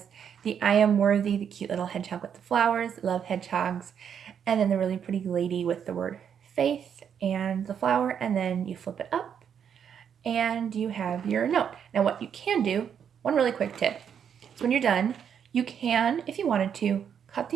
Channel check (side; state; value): left; quieter; 8.0 dB